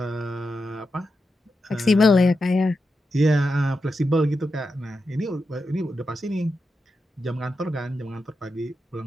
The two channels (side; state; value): both; normal; correlation 0.88